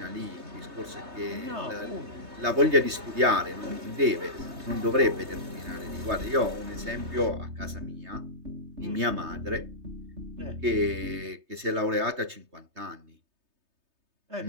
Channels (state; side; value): late; left; 3.2 ms